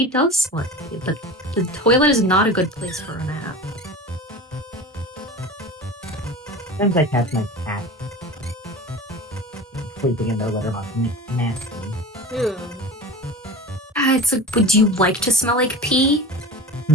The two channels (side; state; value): both; normal; correlation 0.34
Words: does like it, but the toilet is not a good place for a nap. Sometimes I catch my cat sleeping in their litter box and it's nasty. Ew. It's like, would you like to smell like pee?